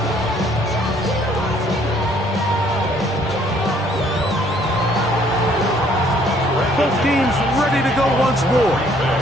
Both teams ready to go once more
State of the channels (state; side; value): normal; both; correlation 0.62